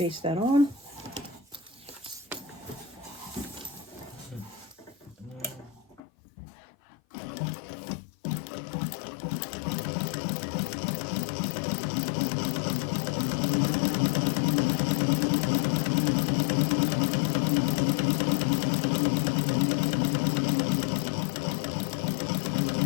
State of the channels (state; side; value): drops out; right; at 6.0 s